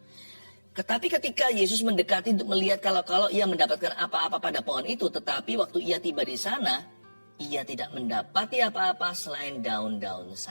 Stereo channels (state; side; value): inverted; both; correlation -1.00